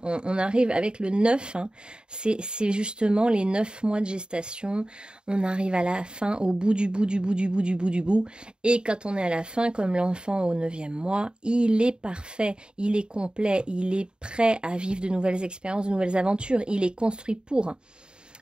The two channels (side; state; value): left; late; 0.049 ms